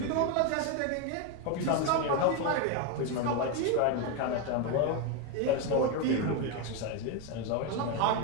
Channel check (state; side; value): different; both; correlation 0.02